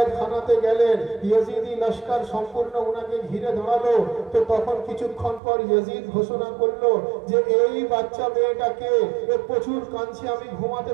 গেলেন, ইয়াজিদি লস্কর সম্পূর্ণ উনাকে ঘিরে দাঁড়ালো। তো তখন কিছুক্ষণ পর ইয়াজিদ ঘোষণা করলো যে এই বাচ্চা মেয়েটাকে প্রচুর কাঁদছে, আমি ঘুমাতে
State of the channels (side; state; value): left; drops out; at 5.4 s